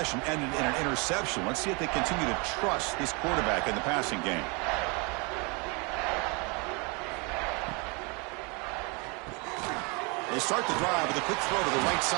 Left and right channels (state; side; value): quieter; left; 30.8 dB